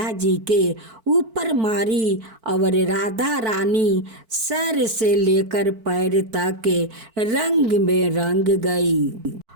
जी के ऊपर मारी और राधा रानी सर से लेकर पैर तक रंग में रंग गई।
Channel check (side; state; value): left; late; 4.5 ms